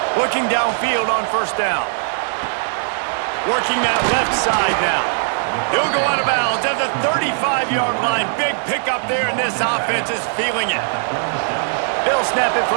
Looking downfield on 1st down. Working that left side now. He'll go out of bounds at the 35-yard line. Big pickup there, and this offense is feeling it. They'll snap it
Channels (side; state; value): left; silent; 66 dB below the other